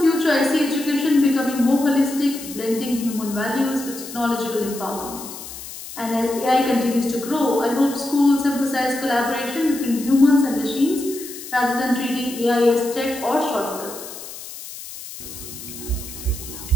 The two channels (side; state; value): left; noise; hiss, 12 dB below the sound